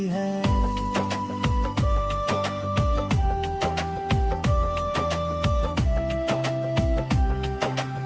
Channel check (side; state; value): both; identical; correlation 1.00